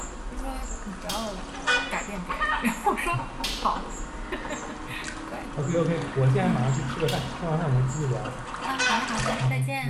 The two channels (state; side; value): identical; both; correlation 1.00